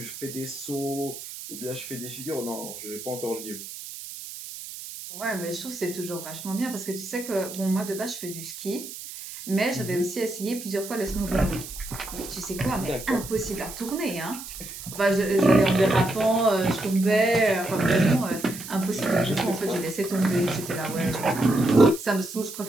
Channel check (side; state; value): right; noise; hiss, 11 dB below the sound